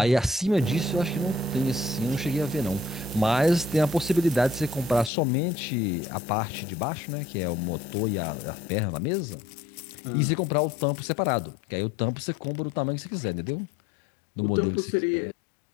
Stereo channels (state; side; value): drops out; right; at 5.1 s